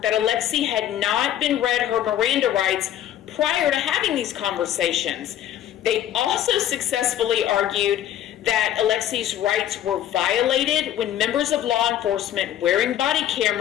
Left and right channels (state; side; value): quieter; right; 11.5 dB